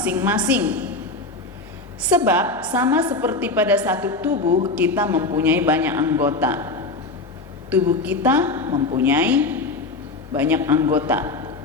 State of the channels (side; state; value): right; quieter; 3.3 dB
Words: Sebab sama seperti pada satu tubuh kita mempunyai banyak anggota. Tubuh kita mempunyai banyak anggota,